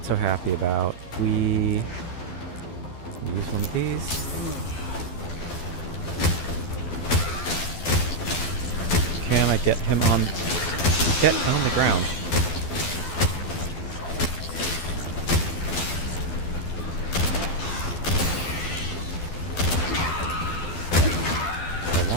so happy about. We use one of these. Can I get him on... Get him on the ground.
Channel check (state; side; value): late; right; 12 ms